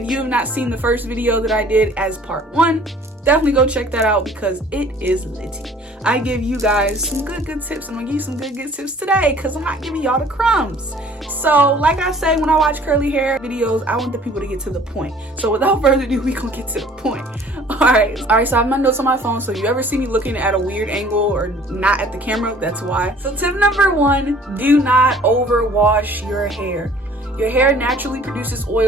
you have not seen the first video that I did as part 1, definitely go check that out because it is litty. I give you guys some good tips. I'm gonna give you some good tips today because I'm not giving y'all the crumbs. So like I say, when I watch curly hair videos, I want the people to get to the point. So without further ado, we gonna get to the point. Alright, so I have my notes on my phone, so if you ever see me looking at a weird angle or not at the camera, that's why. So tip number 1, do not overwash your hair. Your hair naturally produces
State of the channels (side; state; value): both; normal; correlation 0.52